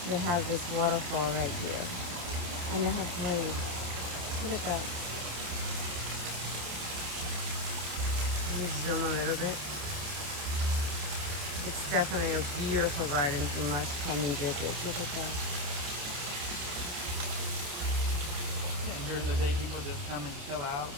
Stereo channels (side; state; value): left; late; 28 ms